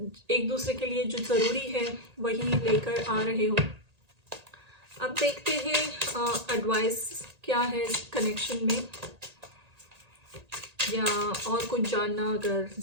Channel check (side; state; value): left; late; 1.8 ms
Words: एक दूसरे के लिए जो ज़रूरी है वही लेकर आ रहे हो। अब देखते हैं एडवाइस क्या है इस कनेक्शन में, या और कुछ जानना अगर